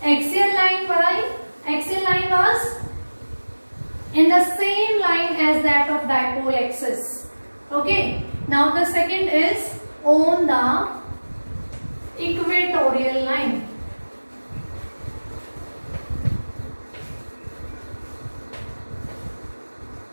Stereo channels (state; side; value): inverted; both; correlation -1.00